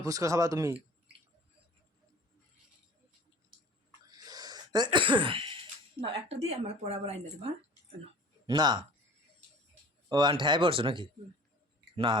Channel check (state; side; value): normal; both; correlation 0.45